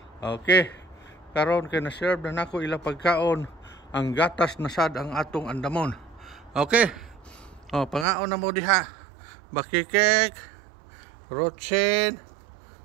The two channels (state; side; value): drops out; left; at 8.1 s